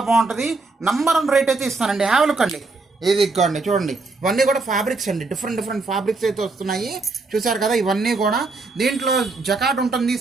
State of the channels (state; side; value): quieter; left; 3.7 dB